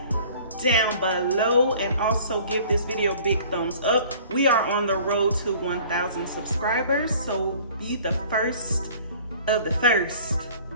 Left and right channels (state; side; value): inverted; both; correlation -0.50